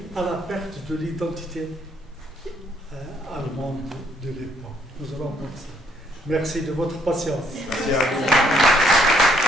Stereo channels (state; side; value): normal; both; correlation 0.68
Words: à la perte de l'identité allemande de l'époque. Nous allons voir ça. Merci de votre patience. Merci à vous.